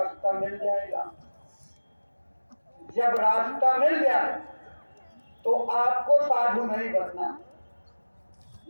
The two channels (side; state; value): both; inverted; correlation -1.00